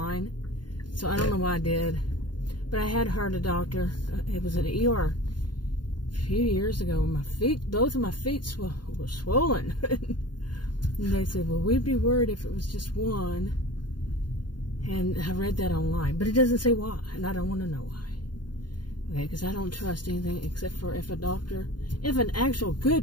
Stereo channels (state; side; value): late; right; 0.71 ms